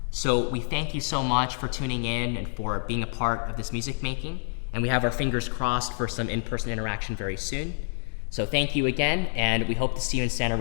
So we thank you so much for tuning in and for being a part of this music making. And we have our fingers crossed for some in-person interaction very soon. So thank you again, and we hope to see you in Santa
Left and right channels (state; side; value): silent; right; 60 dB below the other